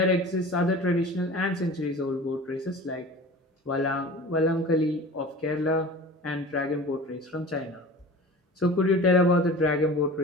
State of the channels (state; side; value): normal; both; correlation 0.38